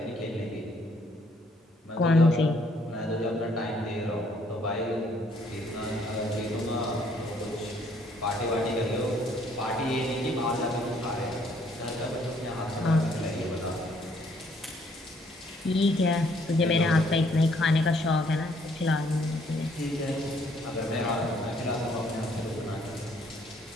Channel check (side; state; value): both; normal; correlation 0.65